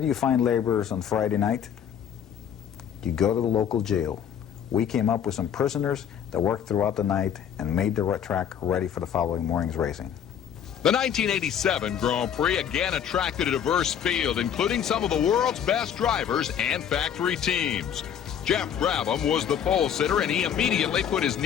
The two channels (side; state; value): right; quieter; 8.8 dB